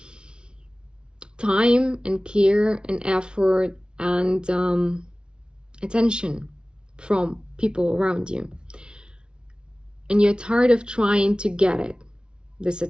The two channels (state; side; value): late; left; 0.054 ms